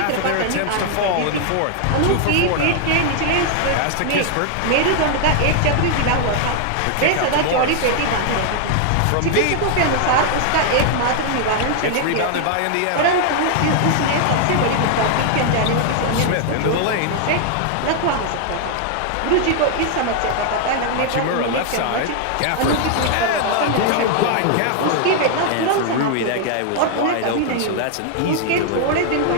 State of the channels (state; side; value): different; both; correlation 0.00